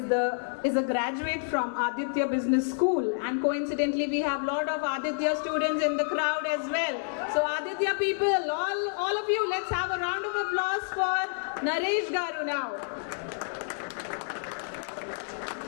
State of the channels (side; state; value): right; silent; digital silence